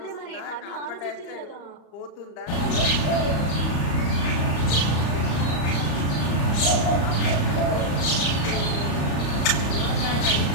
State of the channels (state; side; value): late; right; 34 ms